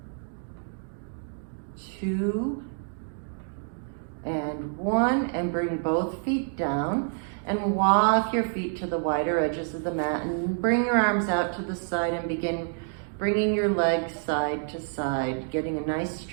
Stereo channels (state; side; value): silent; left; 59 dB below the other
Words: 2, and 1, and bring both feet down and walk your feet to the wider edges of the mat and bring your arms out to the side and begin bringing your legs side to side, getting a nice